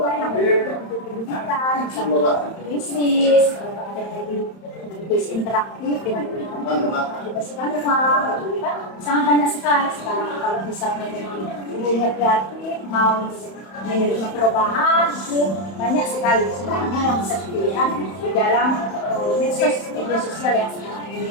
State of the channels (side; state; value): right; late; 31 ms